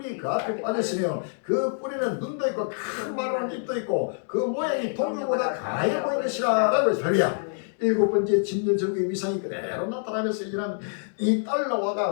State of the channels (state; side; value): silent; right; digital silence